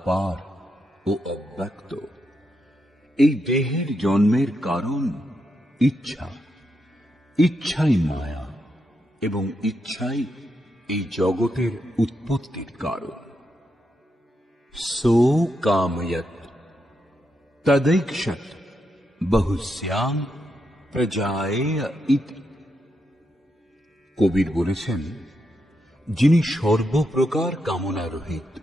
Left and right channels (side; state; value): both; normal; correlation 0.83